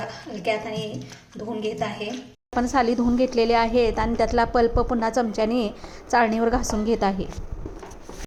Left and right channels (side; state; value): both; identical; correlation 1.00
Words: हलक्या हाताने धुवून घेत आहे। आपण साली धुवून घेतलेले आहेत आणि त्यातला पल्प पुन्हा चमच्याने चाळणीवर घासून घेत आहे।